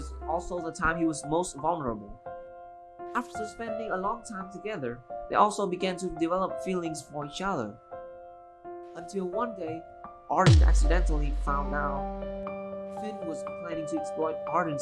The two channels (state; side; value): identical; both; correlation 1.00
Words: also the time he was most vulnerable. After spending a long time together, they also began to develop feelings for each other. Until one day, Arden accidentally found out Finn was planning to exploit